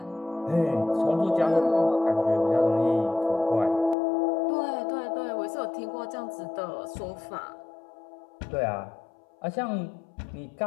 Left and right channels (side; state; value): right; drops out; at 4.0 s